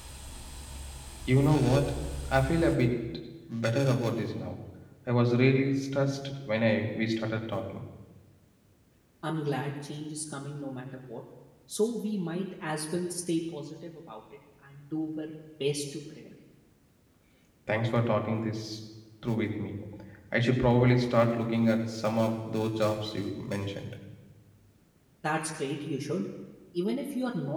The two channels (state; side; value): identical; both; correlation 1.00